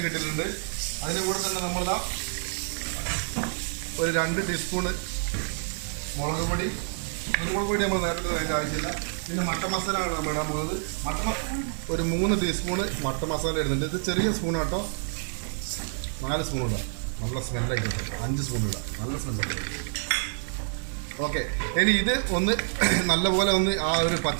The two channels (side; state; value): left; silent; digital silence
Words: ഇട്ടിട്ടുണ്ട്. അതിൻ്റെ കൂടെ തന്നെ നമ്മളിതാ ഒരു 2 ടീസ്പൂണ് മുളക് പൊടി. കുരുമുളക് പൊടി നമ്മൾ നേരത്തെ അതിൻ്റെ ആവശ്യമില്ല. പിന്നെ മട്ടൻ മസാലയാണ് നമ്മൾ ഇടാൻ പോകുന്നത്. ഒരു 3 ടീസ്പൂണ് മട്ടൻ മസാല ഇടുന്നുണ്ട്. ഇത് ചെറിയ സ്പൂൺ കേട്ടോ. 4 സ്പൂൺ ഇടാം, നല്ല സ്മെല്ലായിരിക്കും. 5 സ്പൂൺ ഇടാം, നല്ല സ്മെല്ലായിരിക്കും. ഓക്കെ, ഇനി ഇത് ഒന്ന് നല്ലപോലെ ഒന്ന് ആ ഒരു